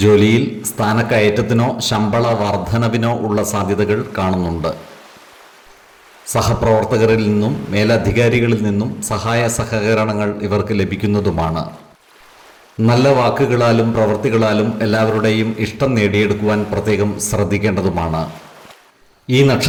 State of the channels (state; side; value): identical; both; correlation 1.00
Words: ജോലിയിൽ സ്ഥാനക്കയറ്റത്തിനോ ശമ്പള വർധനവിനോ ഉള്ള സാധ്യതകൾ കാണുന്നുണ്ട്. സഹപ്രവർത്തകരിൽ നിന്നും മേലധികാരികളിൽ നിന്നും സഹായ സഹകരണങ്ങൾ ഇവർക്ക് ലഭിക്കുന്നതുമാണ്. നല്ല വാക്കുകളാലും പ്രവൃത്തികളാലും എല്ലാവരുടെയും ഇഷ്ടം നേടിയെടുക്കുവാൻ പ്രത്യേകം ശ്രദ്ധിക്കേണ്ടതുമാണ്. ഈ